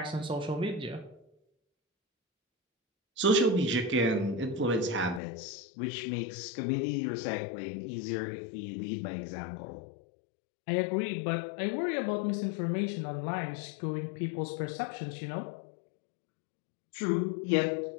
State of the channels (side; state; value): right; drops out; at 5.2 s